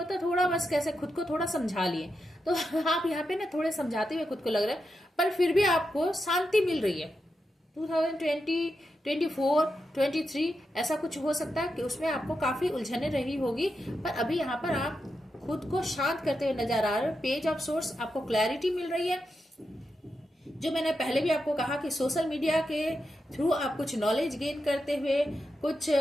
है थोड़ा बस कैसे खुद को थोड़ा समझा लिए। तो आप यहाँ पे ना थोड़े समझाते हुए खुद को लग रहा है, पर फिर भी आपको शांति मिल रही है। 2020, 24, 23 ऐसा कुछ हो सकता है कि उसमें आपको काफी उलझने रही होगी, पर अभी यहाँ पर आप खुद को शांत करते हुए नजर आ रहे हो। पेज ऑफ सोर्स, आपको क्लैरिटी मिल रही है। जो मैंने पहले भी आपको कहा कि सोशल मीडिया के थ्रू आप कुछ नॉलेज गेन करते हुए, कुछ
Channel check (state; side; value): normal; both; correlation 0.87